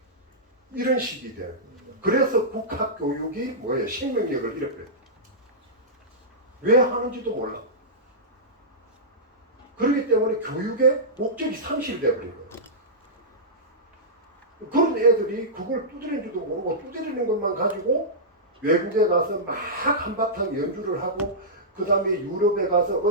이런 식이 돼요. 그래서 국학 교육이 뭐예요? 생명력을 잃어버려요. 왜 하는지도 몰라. 그렇기 때문에 교육의 목적이 상실되어 버린 거예요. 그런 애들이 그걸 두드리는 줄도 모르고 두드리는 것만 가지고 외국에 가서 막 한바탕 연주를 하고 그 다음에 유럽에 가서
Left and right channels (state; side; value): normal; both; correlation -0.14